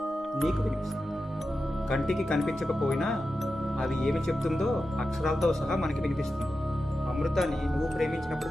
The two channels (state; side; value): normal; both; correlation 0.91